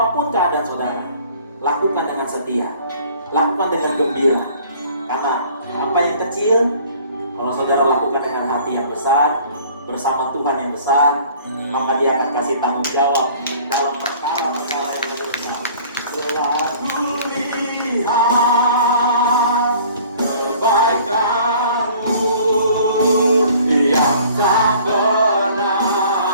keadaan saudara, lakukan dengan setia, lakukan dengan gembira. Karena apa yang kecil, kalau saudara lakukan dengan hati yang besar, bersama Tuhan yang besar, maka Dia akan kasih tanggung jawab dalam perkara-perkara yang besar. Selalu lihat kebaikan-Mu yang tak pernah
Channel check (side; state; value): both; inverted; correlation -0.51